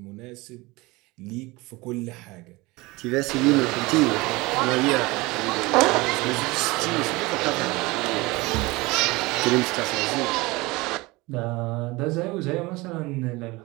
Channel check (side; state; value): left; quieter; 22.6 dB